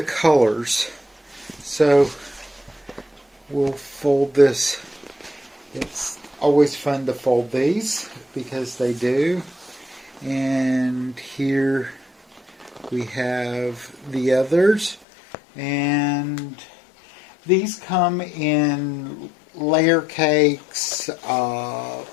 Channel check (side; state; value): right; drops out; at 15.1 s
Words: So we'll fold this. It's always fun to fold these because they do. And here we have the others. And these come in layer cakes,